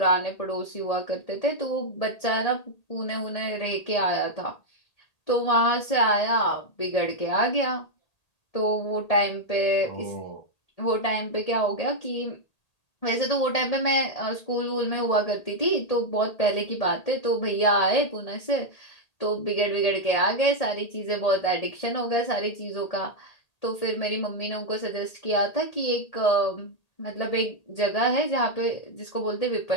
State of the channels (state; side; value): late; right; 1.8 ms